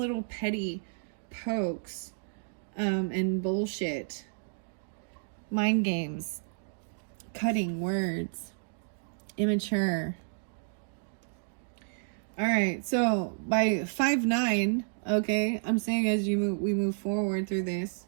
petty pokes. And bullshit. Mind games. Cutting words. immature. All right, so by 5-9, okay, I'm saying as we move forward through this,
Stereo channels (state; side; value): silent; left; digital silence